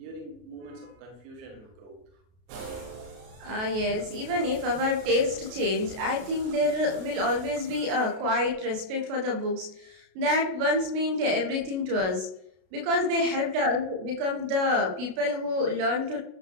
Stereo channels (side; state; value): left; late; 32 ms